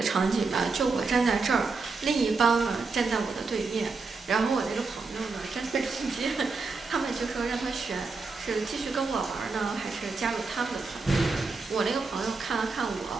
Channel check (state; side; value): quieter; left; 4.2 dB